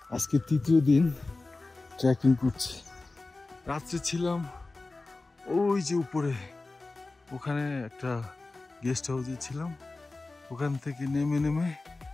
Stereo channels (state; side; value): quieter; right; 3.3 dB